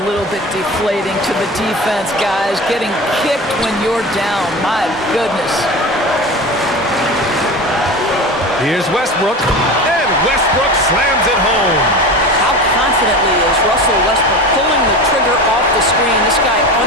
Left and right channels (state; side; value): normal; both; correlation 0.30